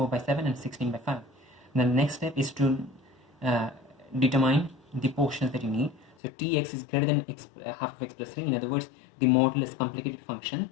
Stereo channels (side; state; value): right; drops out; at 6.2 s